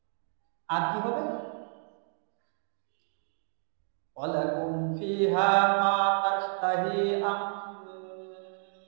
আর কি হবে? ওয়া লাকুম ফিহা মা তাশতাহি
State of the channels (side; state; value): left; silent; digital silence